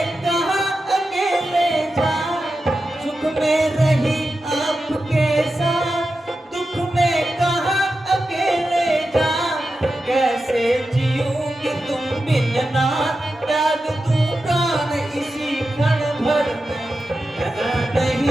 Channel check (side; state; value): both; normal; correlation 0.91